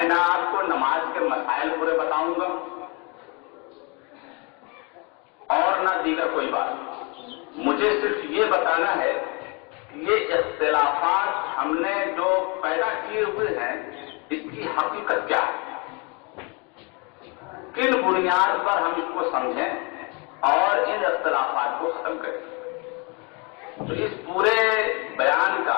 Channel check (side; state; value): right; quieter; 31.6 dB